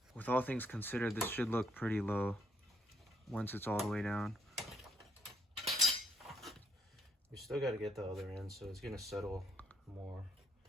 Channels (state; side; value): normal; both; correlation 0.72